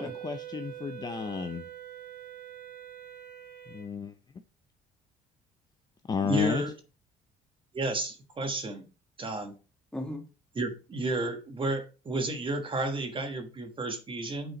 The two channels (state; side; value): normal; both; correlation 0.50